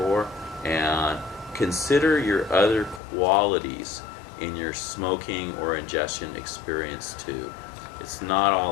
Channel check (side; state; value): right; drops out; at 3.0 s